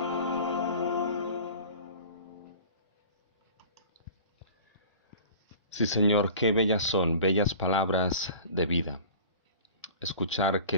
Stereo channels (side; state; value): both; inverted; correlation -0.42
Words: Sí, Señor, qué bellas son, bellas palabras de vida. Escuchar